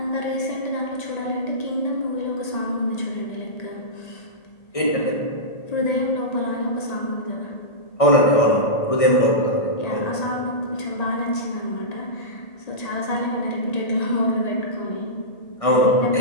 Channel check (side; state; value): right; late; 1.6 ms